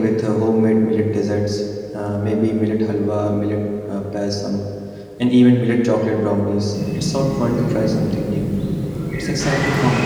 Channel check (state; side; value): identical; both; correlation 1.00